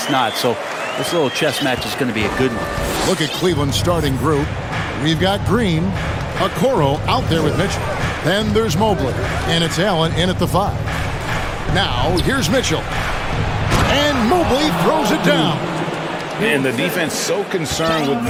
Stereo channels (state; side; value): identical; both; correlation 1.00